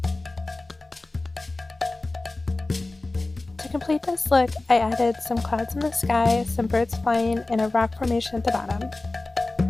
To complete this look, I added some clouds in the sky, some birds flying, and a rock formation at the bottom.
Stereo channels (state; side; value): quieter; right; 3.1 dB